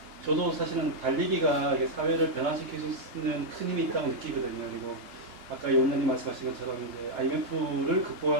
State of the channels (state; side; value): late; left; 2.8 ms